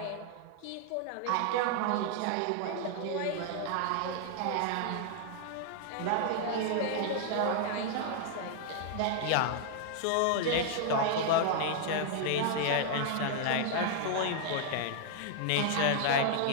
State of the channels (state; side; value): different; both; correlation 0.00